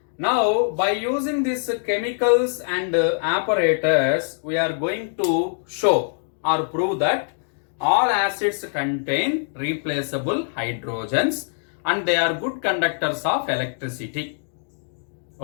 Now, by using these chemicals and apparatus, we are going to show or prove that all acids contain replaceable hydrogens and they are good conductors of electricity.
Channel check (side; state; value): right; silent; digital silence